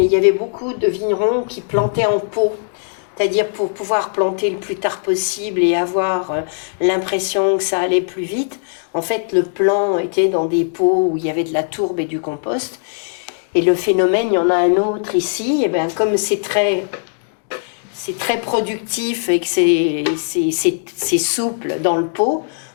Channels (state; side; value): silent; right; digital silence